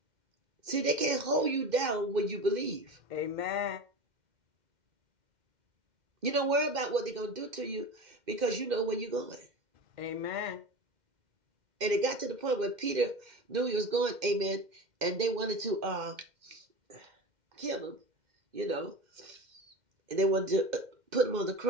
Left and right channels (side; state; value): left; late; 2.1 ms